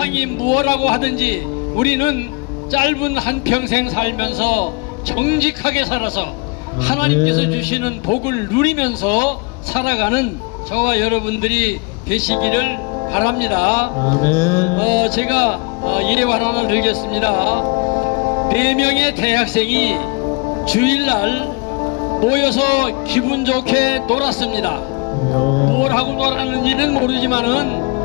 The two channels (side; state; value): right; quieter; 29.8 dB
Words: 무엇라고 하든지 우리는 짧은 한평생 살면서 정직하게 살아서 하나님께서 주시는 복을 누리면서 살아가는 저와 여러분들이 되시기를 바랍니다. 아멘. 제가 예화 하나 들겠습니다. 4명의 대학생이 주일날 모여서 기분 좋게 놀았습니다. 뭘 하고 놀았는지는